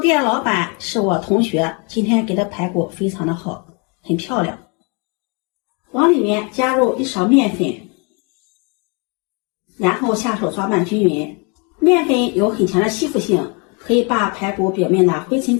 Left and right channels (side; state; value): right; quieter; 32.2 dB